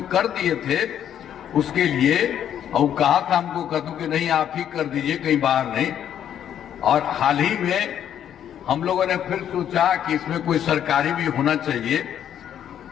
कर दिए थे उसके लिए, और कहा था हमको, कहूं कि नहीं आप ही कर दीजिए, कहीं बाहर नहीं। और हाल ही में हम लोगों ने फिर सोचा कि इसमें कोई सरकारी भी होना चाहिए।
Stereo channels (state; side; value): quieter; right; 9.8 dB